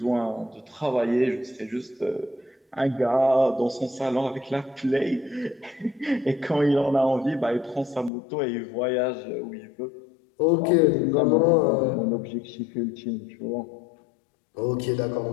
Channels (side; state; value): right; drops out; at 8.1 s